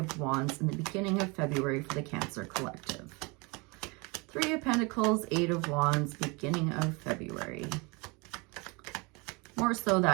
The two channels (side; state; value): left; quieter; 28.3 dB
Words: Wands in the beginning of February for the Cancer Collective. Three of Pentacles, Eight of Wands, beginning of February. More so